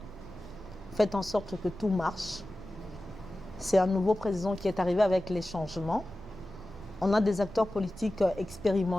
Faites en sorte que tout marche. C'est un nouveau président qui est arrivé avec les changements. On a des acteurs politiques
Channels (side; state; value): both; normal; correlation 0.95